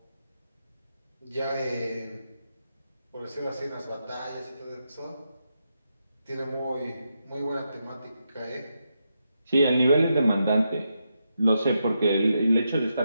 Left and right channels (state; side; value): inverted; both; correlation -0.84